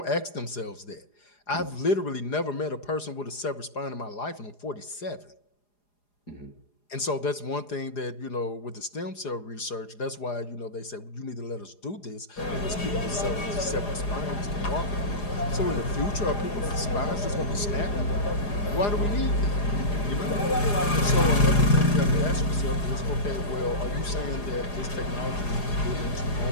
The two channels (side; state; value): right; late; 4.9 ms